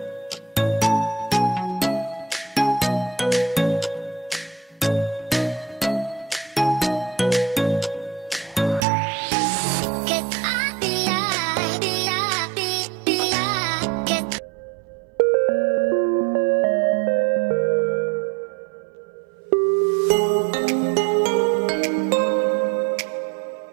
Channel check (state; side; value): drops out; left; at 8.8 s